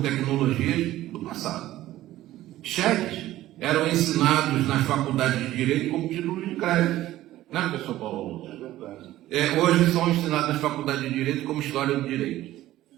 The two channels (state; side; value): quieter; left; 14.9 dB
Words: do passado. Cheques eram ensinados nas faculdades de Direito como títulos de crédito. Não é, professor Paulo? Hoje são ensinados nas faculdades de Direito como História do Direito.